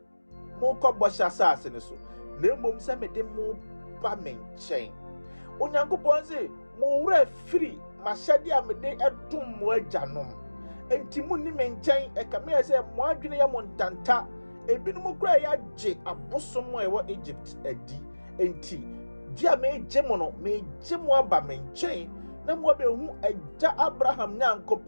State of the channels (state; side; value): inverted; both; correlation -1.00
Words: mo ko bosha sase ne so na mom se me de mo ba menchen onyankopon say mo wura free mashade amede edum mo ajanom enti mu ni menchen e kame say mo adwene ya montanta ebinum kura ya je abosom ewo Egypt adi enti dia me gemo no me gemo aba menchen na mo be hu agya Abraham